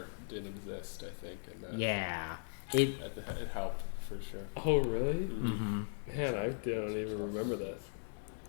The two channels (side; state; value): right; silent; digital silence